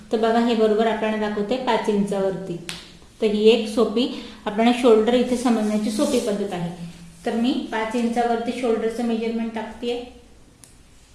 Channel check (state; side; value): identical; both; correlation 1.00